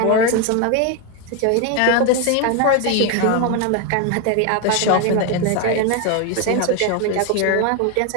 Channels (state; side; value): different; both; correlation 0.02